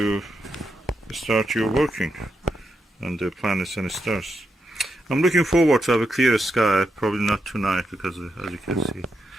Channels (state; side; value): normal; both; correlation 0.84